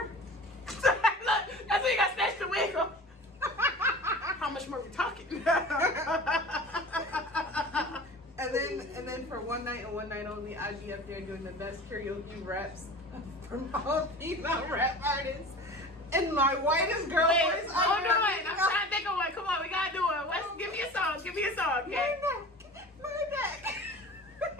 Look, that's when you got snatched the wig off. How much more are we talking? and then for one night and one night only, I'd be up there doing the best karaoke raps from all female rap artists. And my whitest girl voice. Hold on. I'm trying to think of one. Come on, we gotta do it. Give me a song. Okay? My neck.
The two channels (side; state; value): both; normal; correlation 0.38